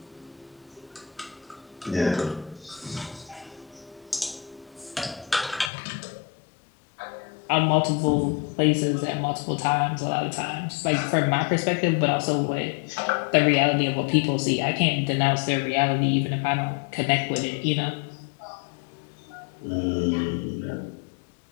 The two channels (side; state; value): right; drops out; at 5.7 s